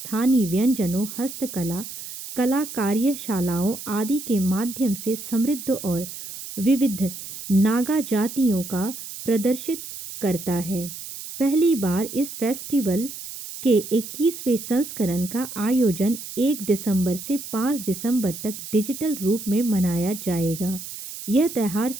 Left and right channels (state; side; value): noise; right; hiss, 10 dB below the sound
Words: व्यंजनों, हस्तकला, कला कार्यशालाओं आदि के माध्यम से समृद्ध और विविध नागा जातियों का प्रदर्शित करता है। पहली बार इस फेस्टिवल के 21वें संस्करण का आयोजन 1 दिसंबर से 5 दिसंबर तक डिजिटल रूप में मनाया जाएगा। यह त्योहार